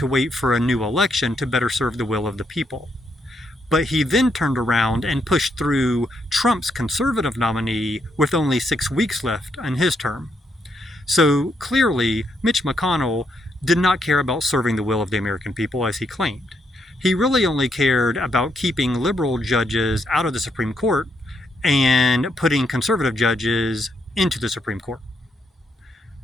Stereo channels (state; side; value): normal; both; correlation 0.77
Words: wait for a new election to better serve the will of the people. But he then turned around and pushed through Trump's conservative nominee with only 6 weeks left on his term. So clearly, Mitch McConnell did not care about serving the will of the American people as he claimed. He really only cared about keeping liberal judges out of the Supreme Court and putting conservative judges into the Supreme Court.